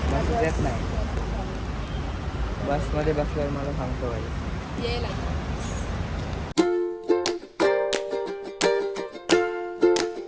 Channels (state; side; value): identical; both; correlation 1.00